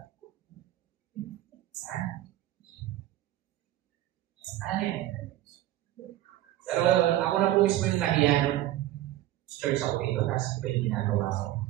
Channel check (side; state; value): left; quieter; 14.4 dB